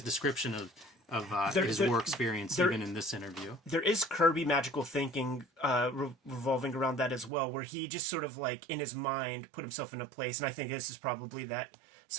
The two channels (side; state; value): left; drops out; at 7.3 s